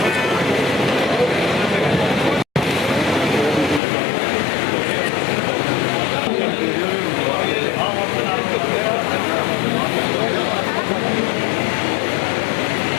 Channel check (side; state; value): right; drops out; at 3.8 s